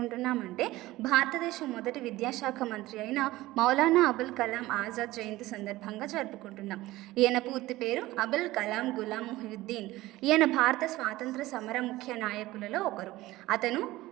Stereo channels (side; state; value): left; quieter; 17.7 dB